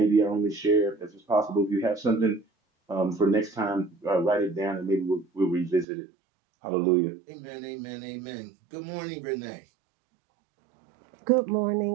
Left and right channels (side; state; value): left; drops out; at 5.9 s